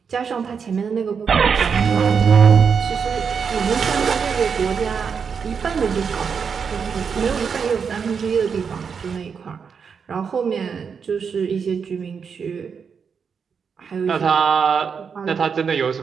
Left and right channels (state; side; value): quieter; left; 6.3 dB